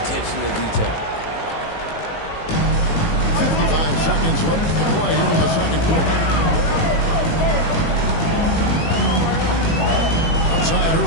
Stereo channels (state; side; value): late; right; 18 ms